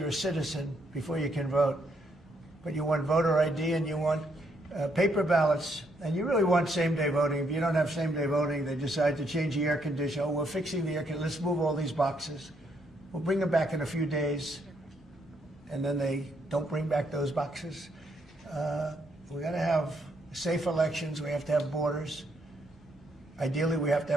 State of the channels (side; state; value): both; normal; correlation 0.74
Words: a citizen before you can vote. But you want voter ID and you want paper ballots, and you really want same-day voting. If you don't have same-day voting, they decide to change the air conditioner. Oh, we're fixing the air conditioner. Let's move all these boxes. We'll bring them back in a few days, and then they don't bring back those boxes. We got to have safe elections. We have to have borders. Ideally, we have to